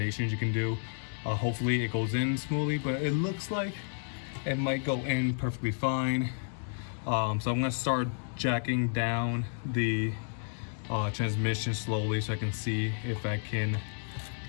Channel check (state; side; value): silent; right; digital silence